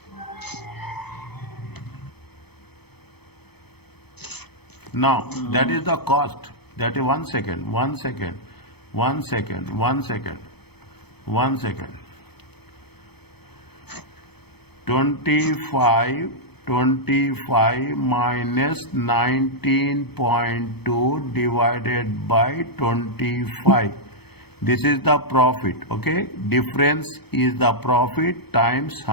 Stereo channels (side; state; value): right; late; 0.97 ms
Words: Now, that is the cost. That is 1 second. 25 minus 19.2 divided by 25. This is the profit. Okay. Difference is the profit times